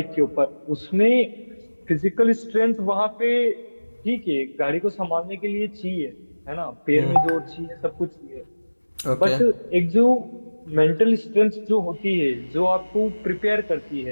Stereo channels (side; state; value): both; inverted; correlation -1.00